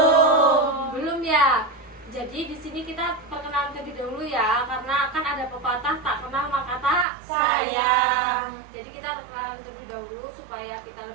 Belum ya. Jadi di sini kita perkenalan terlebih dahulu ya, karena kan ada pepatah tak kenal maka tak Sayang. Jadi kita perkenalan terlebih dahulu supaya kita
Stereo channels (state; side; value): drops out; left; at 7.1 s